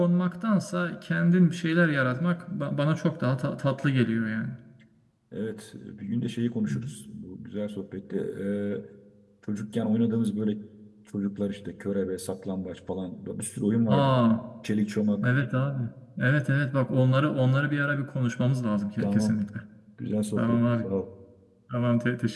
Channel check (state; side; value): identical; both; correlation 1.00